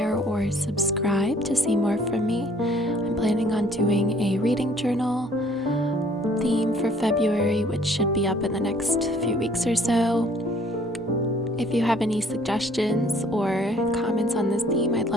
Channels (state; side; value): normal; both; correlation 0.59